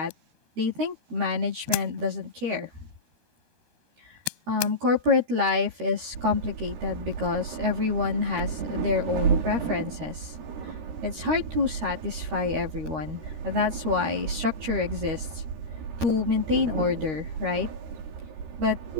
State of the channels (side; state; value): left; late; 13 ms